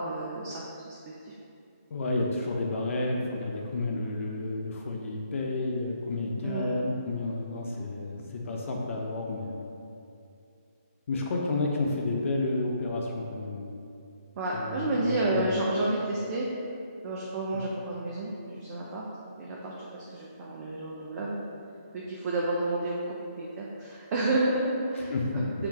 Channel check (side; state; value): both; inverted; correlation -0.67